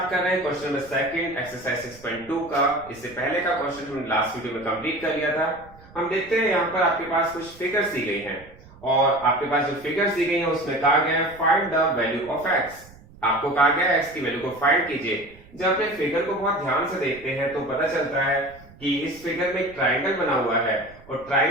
कर रहे हैं क्वेश्चन नंबर सेकंड एक्सरसाइज 6.2 का। इससे पहले का क्वेश्चन हमने लास्ट वीडियो में कंप्लीट कर लिया था। हम देखते हैं यहाँ पर आपके पास कुछ फिगर्स दी गई हैं और आपके पास जो फिगर्स दी गई हैं उसमें कहा गया है find the value of x. आपको कहा गया है एक्स की वैल्यू को फाइंड कीजिए। जब आप एक फिगर को बहुत ध्यान से देखते हैं तो पता चलता है कि इस फिगर में एक ट्राइंगल बना हुआ है और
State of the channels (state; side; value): noise; right; rumble, 22 dB below the sound